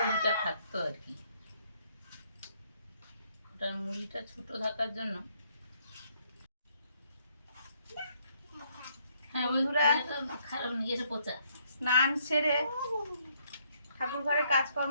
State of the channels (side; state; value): both; inverted; correlation -0.70